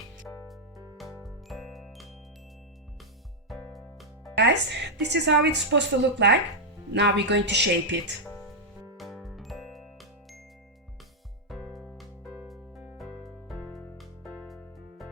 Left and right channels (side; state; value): both; normal; correlation -0.03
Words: Guys, this is how it's supposed to look like. Now we're going to shape it.